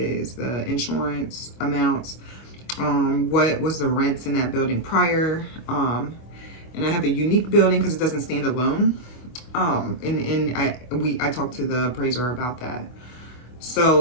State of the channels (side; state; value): right; late; 25 ms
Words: the insurance amounts, what was the rents in that building prior, and I have a unique building because it doesn't stand alone. I talked to the appraiser about that.